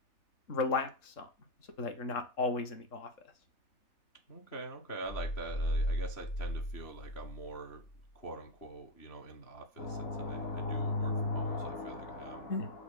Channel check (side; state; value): right; late; 3.7 ms